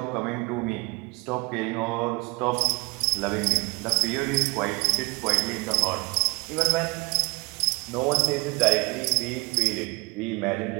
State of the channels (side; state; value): left; quieter; 27.9 dB